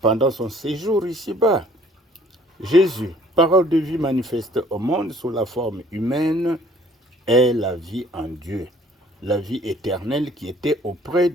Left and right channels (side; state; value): both; normal; correlation 0.57